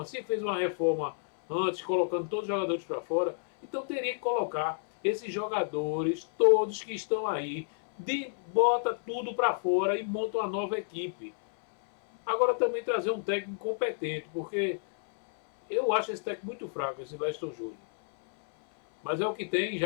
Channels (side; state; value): right; silent; 58 dB below the other